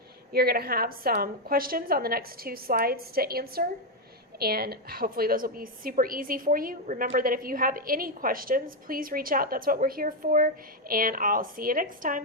You're going to have some questions on the next 2 slides to answer, and hopefully those will be super easy for you. Remember that if you have any questions, please reach out. That's what we're here for, and I'll see you next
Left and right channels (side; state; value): both; normal; correlation 0.04